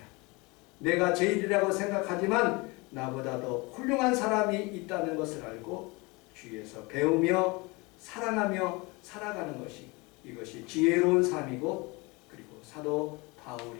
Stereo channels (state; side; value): quieter; right; 26.0 dB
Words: 내가 제일이라고 생각하지만 나보다 더 훌륭한 사람이 있다는 것을 알고 주위에서 배우며 사랑하며 살아가는 것이 이것이 지혜로운 삶이고 그리고 사도